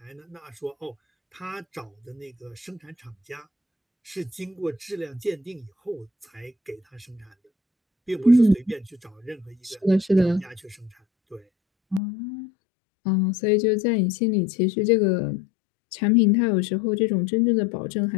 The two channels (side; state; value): right; drops out; at 12.0 s